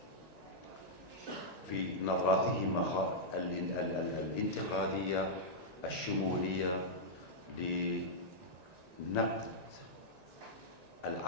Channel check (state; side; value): late; left; 1.9 ms